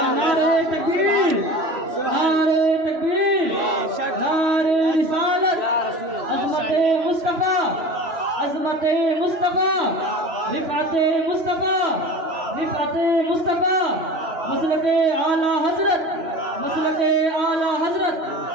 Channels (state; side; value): late; left; 3.0 ms